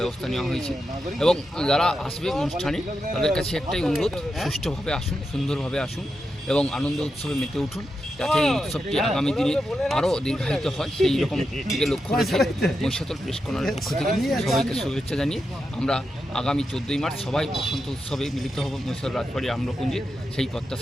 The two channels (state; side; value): normal; both; correlation 0.87